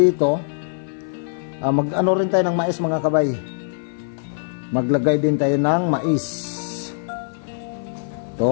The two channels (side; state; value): right; silent; 60 dB below the other